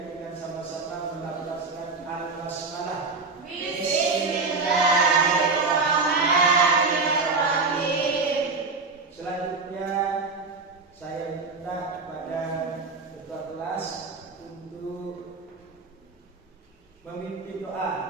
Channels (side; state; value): left; quieter; 4.2 dB